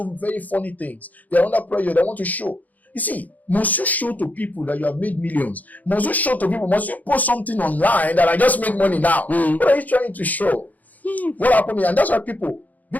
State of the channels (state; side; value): late; right; 0.080 ms